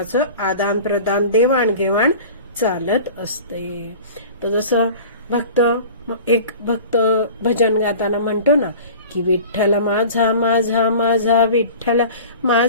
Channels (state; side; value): inverted; both; correlation -0.40